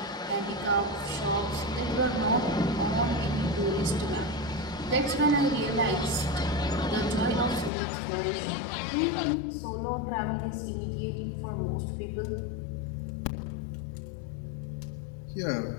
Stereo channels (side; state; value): right; drops out; at 7.7 s